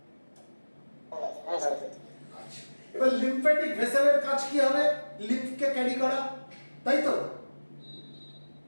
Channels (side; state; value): both; inverted; correlation -1.00